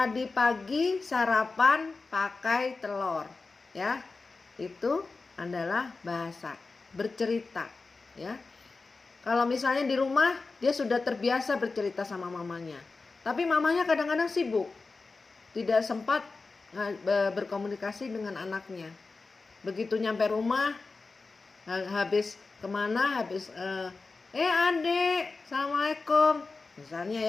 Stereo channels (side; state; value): right; quieter; 3.9 dB